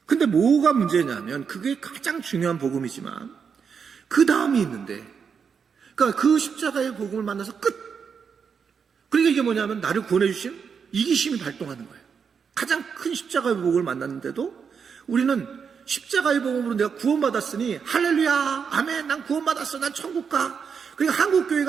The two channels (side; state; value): left; quieter; 6.4 dB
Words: 근데 뭐가 문제냐면 그게 가장 중요한 복음이지만 그 다음이 있는데 그러니까 그 십자가의 복음을 만나서 끝. 그러니까 이게 뭐냐면 나를 구원해 주신 이기심이 발동하는 거예요. 가장 큰 십자가의 복음을 만났는데도 우리는 십자가의 복음으로 내가 구원받았으니 할렐루야 아멘 난 구원받았어 난 천국 가. 그러니까